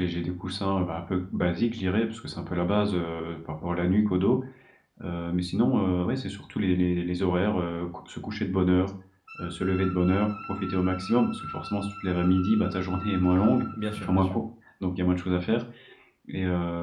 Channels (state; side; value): identical; both; correlation 1.00